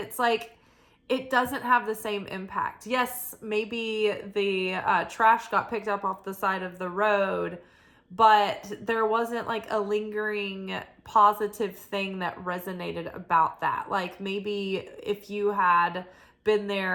it doesn't have the same impact. Yes, maybe the trash got picked up off the side of the road, but there wasn't a lingering positive thing that resonated about that. Maybe if you had been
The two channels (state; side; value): identical; both; correlation 1.00